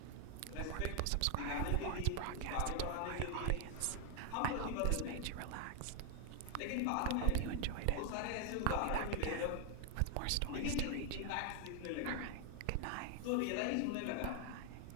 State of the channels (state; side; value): different; both; correlation 0.01